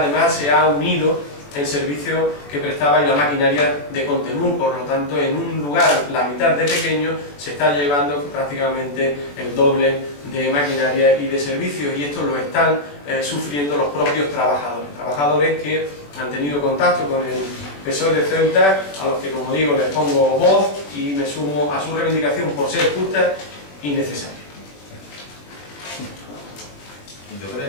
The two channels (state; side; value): late; right; 21 ms